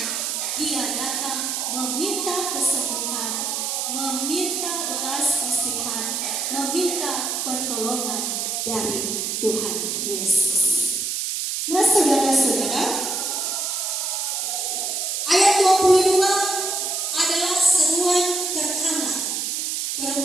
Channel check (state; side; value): noise; right; hiss, 1 dB below the sound